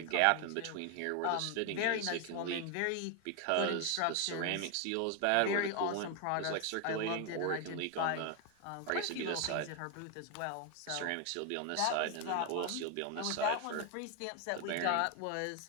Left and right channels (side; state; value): both; different; correlation 0.01